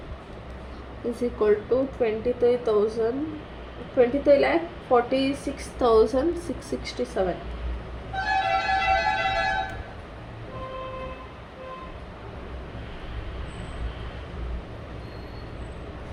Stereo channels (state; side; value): identical; both; correlation 1.00